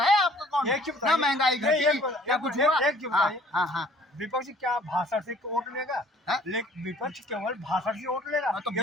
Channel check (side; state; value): both; normal; correlation 0.55